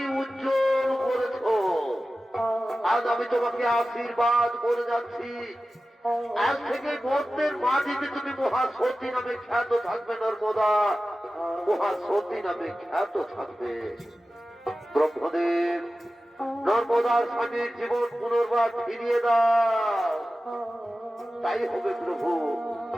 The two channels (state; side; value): normal; both; correlation 0.95